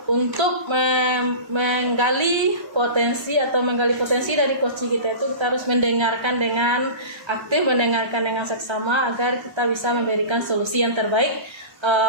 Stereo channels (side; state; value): left; late; 1.3 ms